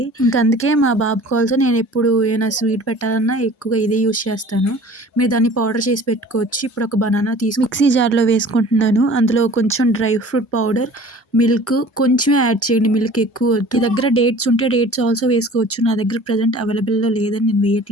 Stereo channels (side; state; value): both; normal; correlation 0.46